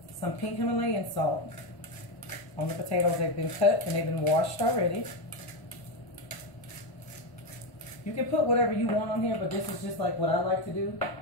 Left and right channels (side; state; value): right; late; 1.0 ms